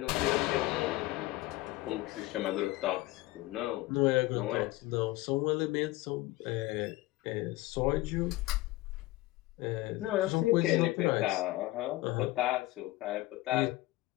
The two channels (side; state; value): right; quieter; 18.5 dB